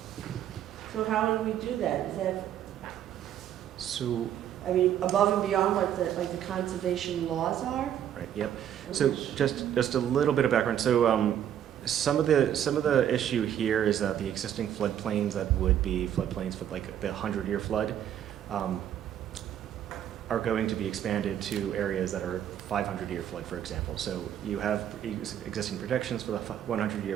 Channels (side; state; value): left; quieter; 10.3 dB